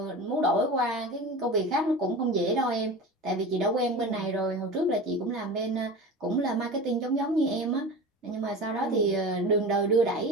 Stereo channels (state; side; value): normal; both; correlation 0.32